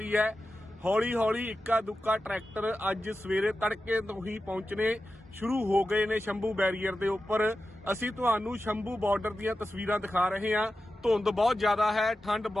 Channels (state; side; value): normal; both; correlation 0.92